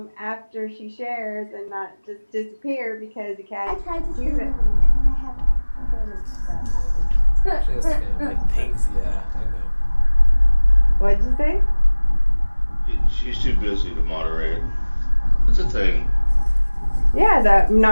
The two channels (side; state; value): both; inverted; correlation -1.00